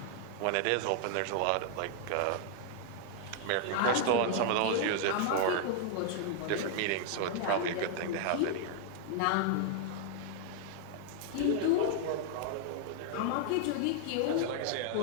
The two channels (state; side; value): different; both; correlation 0.00